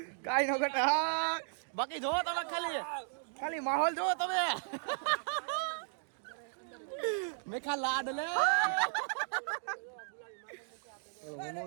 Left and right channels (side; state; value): left; silent; digital silence